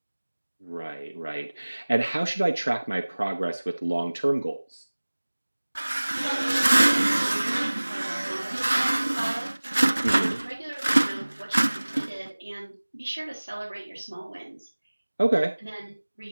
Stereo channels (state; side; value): inverted; both; correlation -1.00